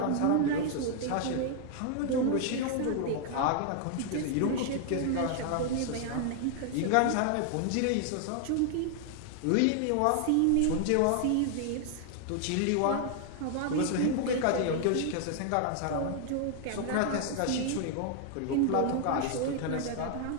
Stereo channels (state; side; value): different; both; correlation 0.00